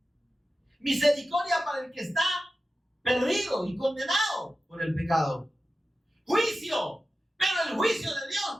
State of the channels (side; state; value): both; normal; correlation 0.93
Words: Misericordia para el que está perdido y condenado por el pecado. Juicio. Pero el juicio de